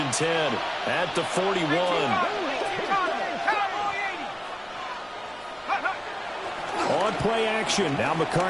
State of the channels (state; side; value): noise; right; rumble, 28 dB below the sound